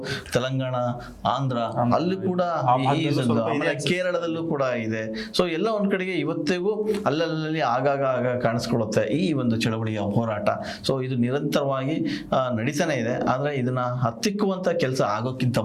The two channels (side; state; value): both; identical; correlation 1.00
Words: ತೆಲಂಗಾಣ, ಆಂಧ್ರ ಅಲ್ಲಿ ಕೂಡ ಆಮೇಲೆ ಕೇರಳದಲ್ಲೂ ಕೂಡ ಇದೆ. ಸೊ ಎಲ್ಲ ಒಂದ್ ಕಡೆಗೆ ಇವತ್ತಿಗೂ ಅಲ್ಲಲ್ಲಿ ಆಗಾಗ ಕಾಣಿಸ್ಕೊಳ್ಳುತ್ತೆ ಈ ಒಂದು ಚಳವಳಿಯ ಹೋರಾಟ. ಸೊ ಇದು ನಿರಂತರವಾಗಿ ನಡೀತಾನೆ ಇದೆ. ಆದ್ರೆ ಇದನ್ನ ಹತ್ತಿಕ್ಕುವಂತ ಕೆಲಸ ಆಗೋಕ್ಕಿಂತ